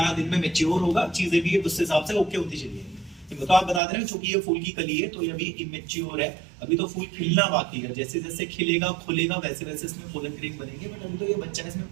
दिन में मैच्योर होगा, चीजें भी उस हिसाब से ओके होती चली जाएगी। तो आप बता दे रहे हैं चूंकि ये फूल की कली है तो ये अभी इमेच्योर है, अभी तो फूल खिलना बाकी है, जैसे जैसे खिलेगा खुलेगा वैसे वैसे इसमें पोलन ग्रेन बनेंगे, बट अभी तो ये बच्चा है, इसमें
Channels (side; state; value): left; drops out; at 3.8 s